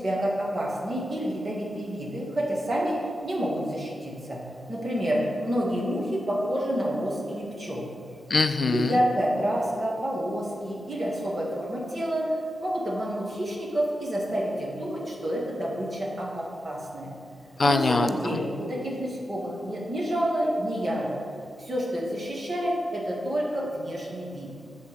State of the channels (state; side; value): normal; both; correlation 0.89